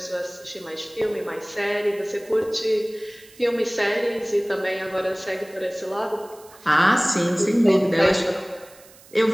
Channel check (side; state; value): right; noise; hiss, 24 dB below the sound